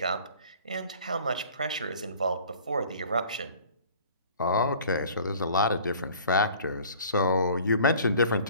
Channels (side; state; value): both; inverted; correlation -0.49